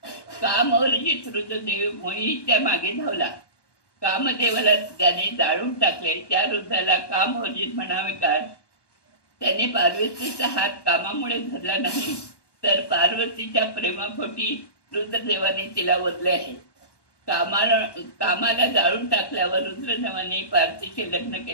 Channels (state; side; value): late; right; 1.1 ms